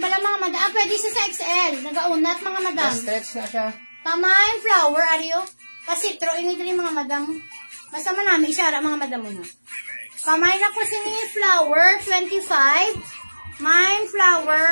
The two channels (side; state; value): both; inverted; correlation -1.00